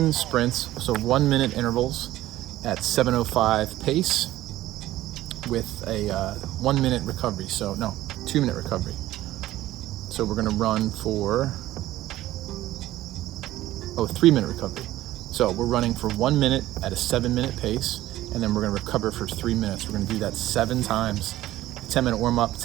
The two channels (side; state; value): left; quieter; 15.1 dB